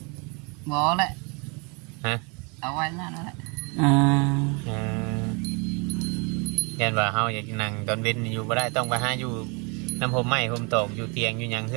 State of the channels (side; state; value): left; quieter; 32.5 dB